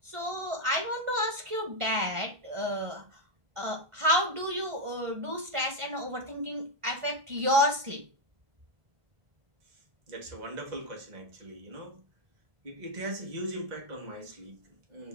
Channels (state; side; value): late; left; 1.5 ms